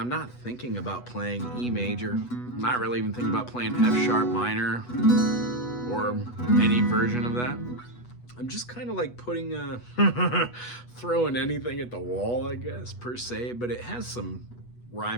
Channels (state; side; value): late; right; 8.2 ms